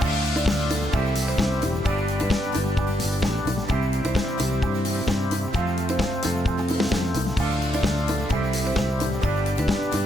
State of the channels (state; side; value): normal; both; correlation 0.78